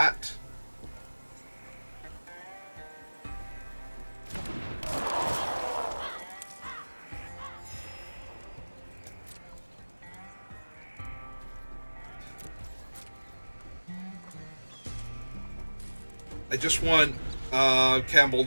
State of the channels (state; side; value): inverted; both; correlation -1.00